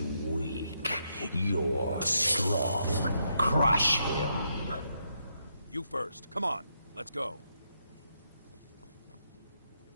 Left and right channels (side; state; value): both; inverted; correlation -0.79